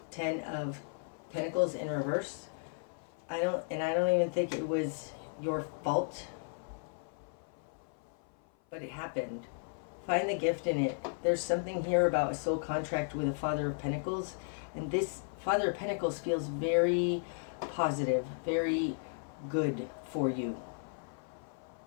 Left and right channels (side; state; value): right; silent; 55 dB below the other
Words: Ten of Pentacles in reverse. I don't even think it was your fault, but it happened. Find the gift in it. There's something here about a soul contract with a Father of Pentacles, and this Father of Pentacles feels very positive, very good for you.